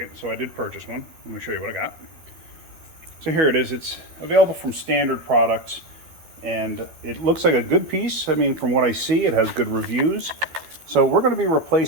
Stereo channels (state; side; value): late; left; 12 ms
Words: so I did purchase one. Let me show you what I got. So here it is. It's available from standard products, and it looks like a good piece. I mean, from what I see, it has good reviews. So we're going to be